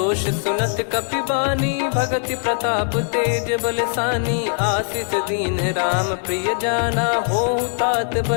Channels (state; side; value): silent; right; 65 dB below the other